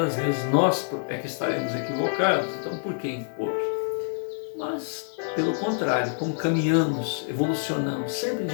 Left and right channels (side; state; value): right; silent; 61 dB below the other